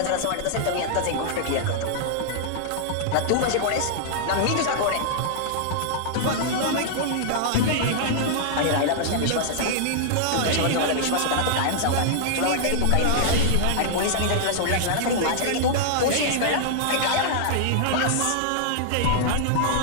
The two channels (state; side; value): different; both; correlation -0.01